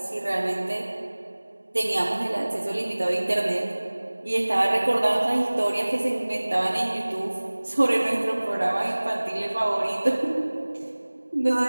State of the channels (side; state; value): both; inverted; correlation -1.00